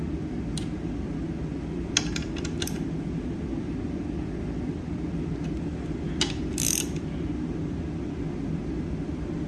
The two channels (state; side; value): identical; both; correlation 1.00